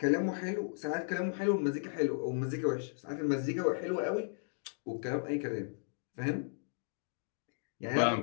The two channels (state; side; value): silent; right; digital silence